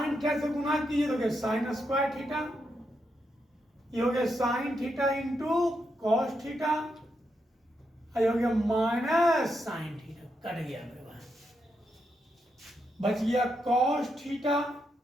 थीटा से गुणा कीजिए तो हो गया साइन स्क्वायर थीटा, ये हो गया sine theta into cos theta, ये हो गया माइनस साइन थीटा, कट गया मेरे भाई, बच गया कॉस थीटा।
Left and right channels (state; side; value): normal; both; correlation 0.83